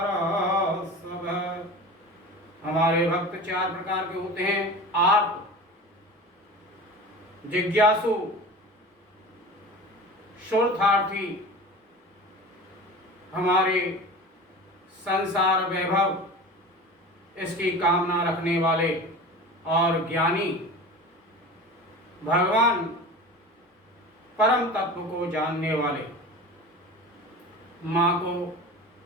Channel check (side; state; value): both; normal; correlation 0.34